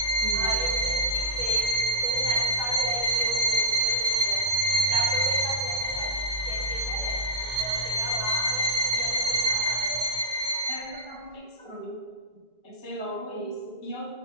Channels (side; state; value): left; late; 1.9 ms